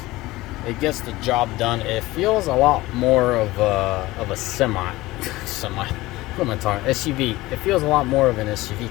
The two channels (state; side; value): quieter; right; 18.8 dB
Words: It gets the job done. It feels a lot more of a semi. What am I talking? SUV. It feels a lot more of an SUV